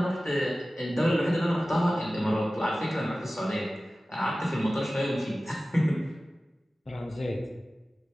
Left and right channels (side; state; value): both; normal; correlation 0.96